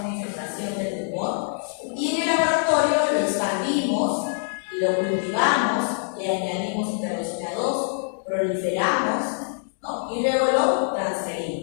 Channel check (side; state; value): right; silent; digital silence